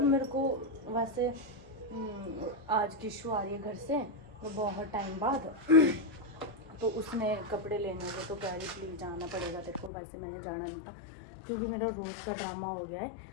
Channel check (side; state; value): right; drops out; at 9.9 s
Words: मेरे को वैसे आज किशु आ रही है घर से तो बहुत टाइम बाद तो उसने कपड़े लेने थे तो कह रही प्लीज़ जाना पड़ेगा तेरे को। वैसे मैंने जाना नहीं था क्योंकि मेरा रोज़ का ड्रामा हो गया है।